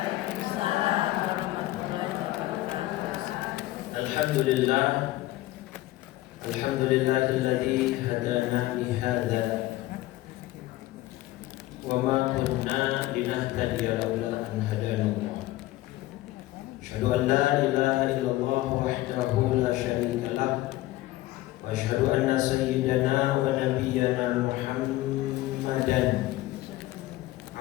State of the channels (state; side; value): quieter; right; 17.0 dB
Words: warahmatullahi wabarakatuh. Alhamdulillah. Alhamdulillahilladzi hadana lihadza wa ma kunna linahtadiya laula an hadana Allah. Asyhadu an la ilaha illallah wahdahu la syarika lah. Wa asyhadu anna sayyidana wa nabiyyana Muhammadan